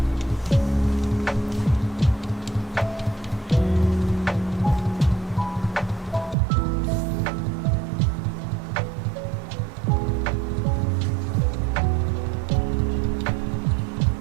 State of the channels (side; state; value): left; drops out; at 6.4 s